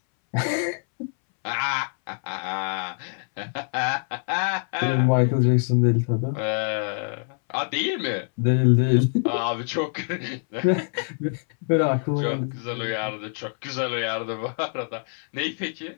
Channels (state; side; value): silent; right; 62 dB below the other